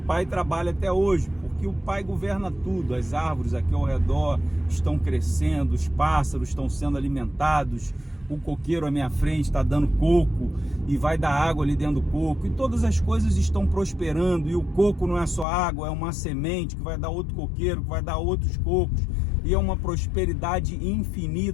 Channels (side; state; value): right; drops out; at 15.5 s